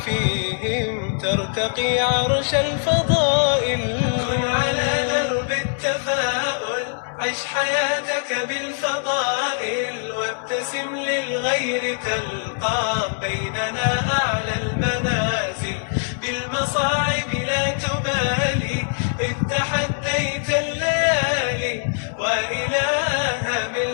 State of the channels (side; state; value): right; silent; 62 dB below the other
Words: فيهم ترتقي عرش الفضائل. كن على درب التفاؤل، عش حياتك بالفضائل، وابتسم للغير تلقى بيننا أعلى المنازل. بالمصاعب لا تبالي إذ تحديت الليالي، وإلى هام